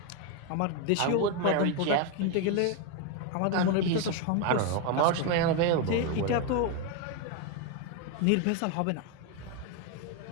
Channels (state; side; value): different; both; correlation 0.02